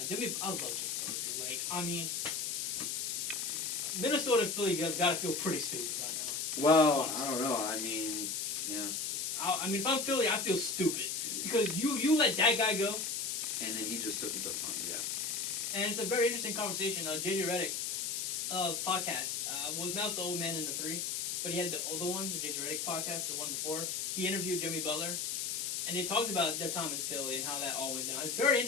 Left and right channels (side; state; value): left; noise; hiss, 1 dB below the sound